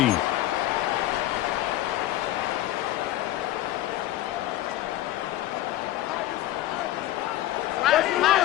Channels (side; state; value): right; quieter; 14.7 dB